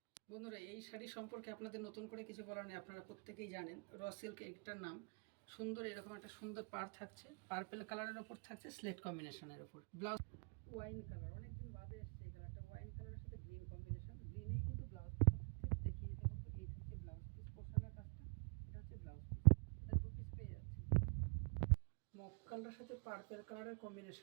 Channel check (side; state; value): left; quieter; 39.4 dB